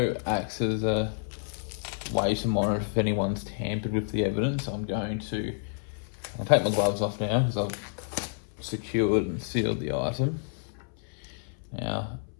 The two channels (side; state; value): right; silent; 58 dB below the other